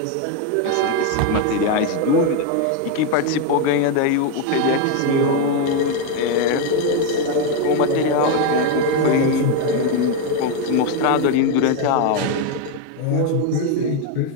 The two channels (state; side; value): different; both; correlation 0.02